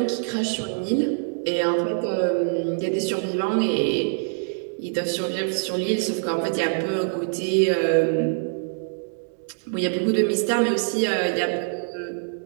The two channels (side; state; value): left; silent; digital silence